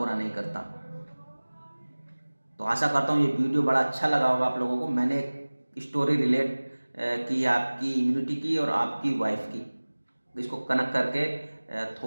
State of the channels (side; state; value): both; inverted; correlation -1.00